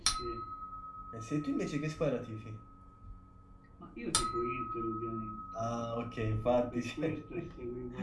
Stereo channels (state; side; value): identical; both; correlation 1.00